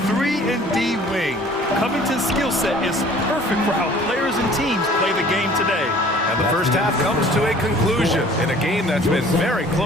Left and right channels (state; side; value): normal; both; correlation 0.51